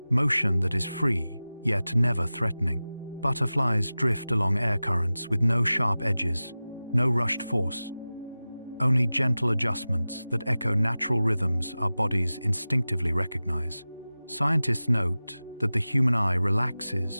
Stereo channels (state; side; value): inverted; both; correlation -0.96